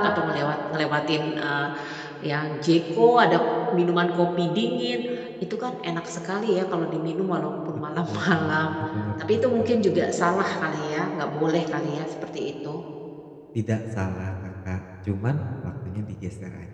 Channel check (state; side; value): identical; both; correlation 1.00